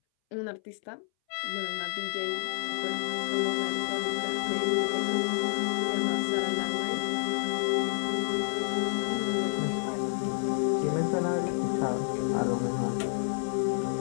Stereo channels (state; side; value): silent; right; 58 dB below the other